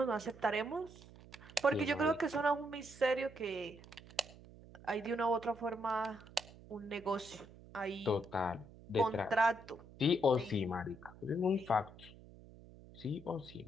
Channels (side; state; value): right; noise; hum, 20 dB below the sound